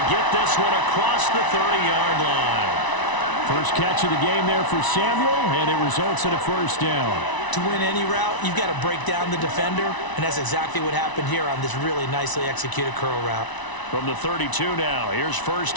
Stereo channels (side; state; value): right; late; 1.0 ms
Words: get this one across the 30-yard line. First catch of the game there for Samuel, and it results in a 1st down. To win any route, you've got to break down the defender, and that's exactly what happened here on this really nicely executed curl route. From the 32 now, here's